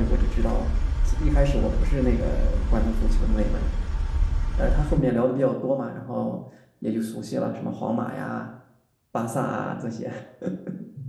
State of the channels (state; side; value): identical; both; correlation 1.00